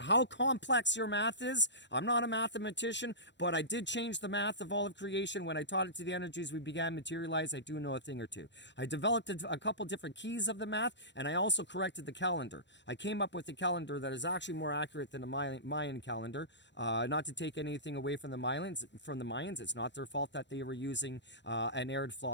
complex your math is, I'm not a mathematician, but I did change the math of all of creation. When I taught it to the energies we began materialize, I do know a thing or two. I developed a couple different keys of the math, and I also corrected the calendar. I came up with a calendar that is actually more accurate than the Mayan calendar. Not to take anything away from the Mayans, it's not their fault that they were using an erred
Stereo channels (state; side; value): late; right; 0.52 ms